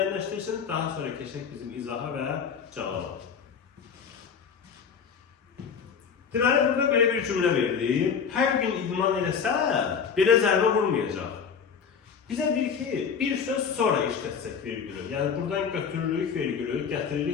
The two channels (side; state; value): right; quieter; 6.6 dB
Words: daha sonra keçək bizim izaha və cavaba. Deməli, burada belə bir cümlə verilib. Hər gün idman eləsə, belə zərbə vurmayacaq. Bizə deyir ki, bir söz sonra işlətsək vergülü. Yəni, buradan götürürük vergülü,